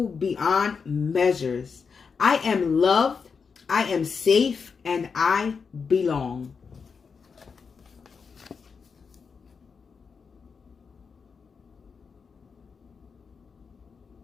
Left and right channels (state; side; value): quieter; right; 5.6 dB